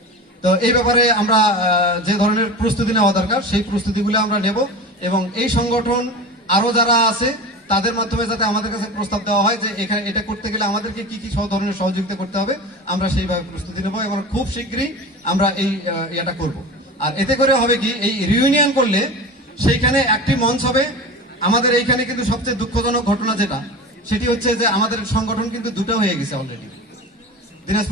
তো এই ব্যাপারে আমরা যে ধরনের প্রস্তুতি নেওয়া দরকার, সেই প্রস্তুতিগুলো আমরা নেব, এবং এই সংগঠন আরো যারা আছে তাদের মাধ্যমে যাতে আমাদের কাছে প্রস্তাব দেওয়া হয় যে এখানে এটা করতে গেলে আমাদেরকে কি কি ধরনের সহযোগিতা করতে হবে, আমরা সেইভাবে প্রস্তুতি নেব, এবং খুব শীঘ্রই আমরা এই এটা করব। আর এতে করে হবে কি, এই রিউনিয়ন করলে সেইখানে একটি মঞ্চ হবে। আমাদের এইখানে কিন্তু সবচেয়ে দুঃখজনক ঘটনা যেটা, সেটি হচ্ছে যে আমাদের সংগঠন কিন্তু 2টা হয়ে গেছে অলরেডি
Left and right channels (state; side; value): normal; both; correlation 0.30